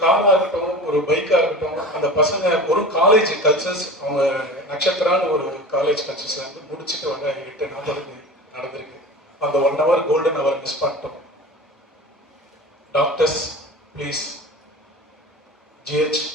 காராக இருக்கட்டும், ஒரு பைக்காக இருக்கட்டும், அந்த பசங்க ஒரு காலேஜ் கல்ச்சர்ஸ், அவங்க நட்சத்திரான்னு ஒரு காலேஜ் கல்ச்சர்ஸ் வந்து முடிச்சுட்டு வர 8:40 நடந்திருக்கு. அந்த 1 hour கோல்டன் ஹவர் மிஸ் பண்ணிட்டோம். டாக்டர்ஸ் ப்ளீஸ், ஜிஹெச்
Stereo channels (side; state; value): both; normal; correlation 0.35